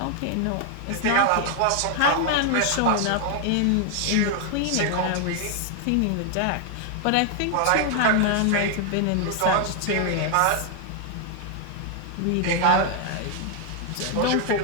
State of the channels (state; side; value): different; both; correlation 0.00